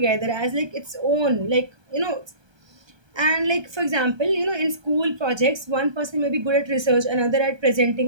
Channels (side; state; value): left; late; 1.3 ms